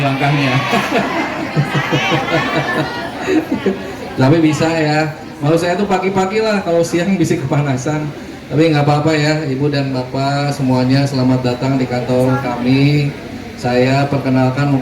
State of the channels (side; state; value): both; identical; correlation 1.00